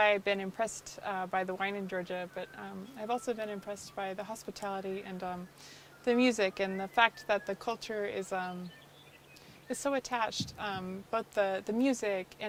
been impressed by the wine in Georgia, but I've also been impressed by the hospitality and the music, and the fact that the culture is so attached. Both the music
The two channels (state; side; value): identical; both; correlation 1.00